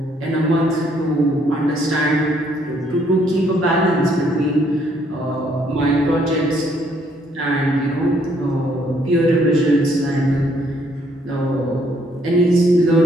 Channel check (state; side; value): normal; both; correlation 0.68